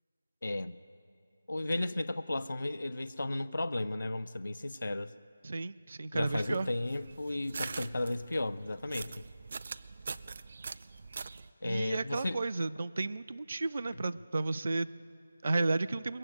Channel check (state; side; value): inverted; both; correlation -0.94